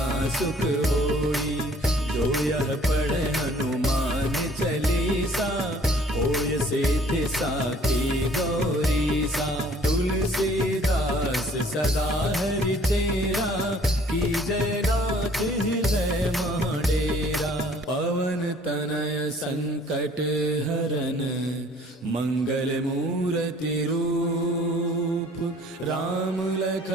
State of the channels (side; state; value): both; normal; correlation 0.56